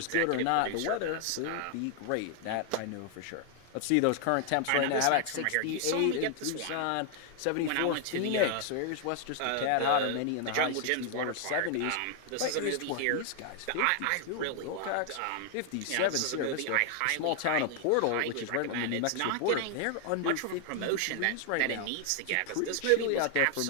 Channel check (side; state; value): both; different; correlation 0.00